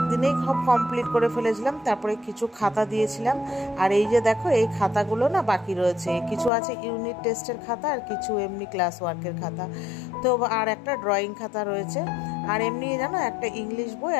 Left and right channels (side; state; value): right; drops out; at 6.5 s